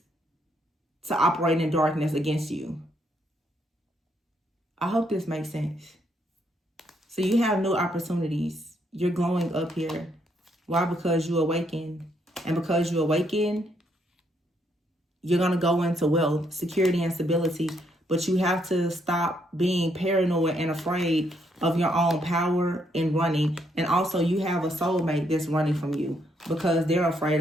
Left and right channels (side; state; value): both; normal; correlation 0.74